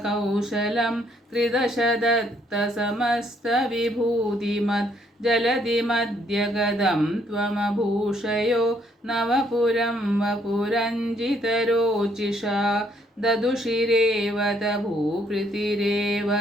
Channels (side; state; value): both; normal; correlation 0.68